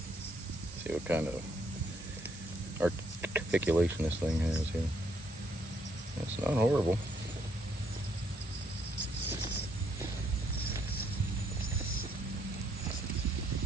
See what kind of articulation this thing has here. It's not horrible.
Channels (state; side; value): normal; both; correlation 0.71